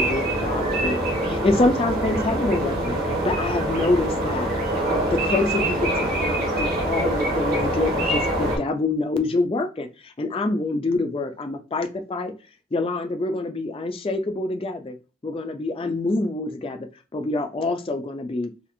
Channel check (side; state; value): both; normal; correlation 0.56